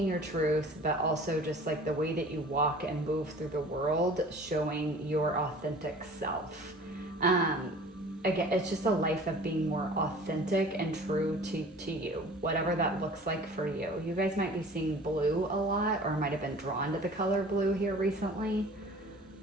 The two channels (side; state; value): both; normal; correlation 0.45